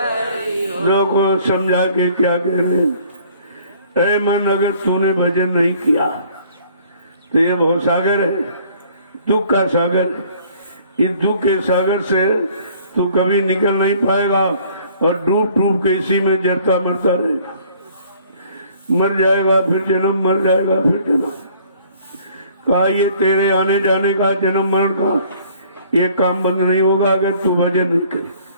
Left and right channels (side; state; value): both; inverted; correlation -0.57